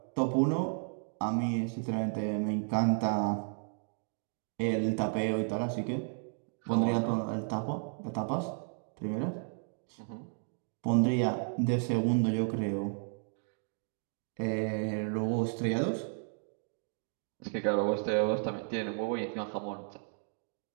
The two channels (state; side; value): silent; left; 56 dB below the other